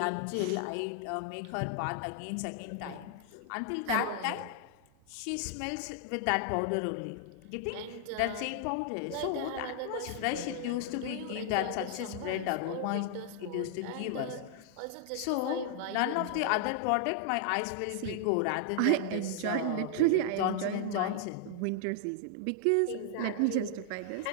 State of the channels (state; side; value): different; both; correlation 0.00